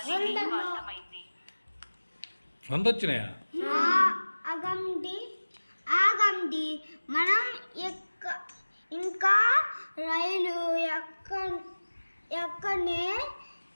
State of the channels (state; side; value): inverted; both; correlation -1.00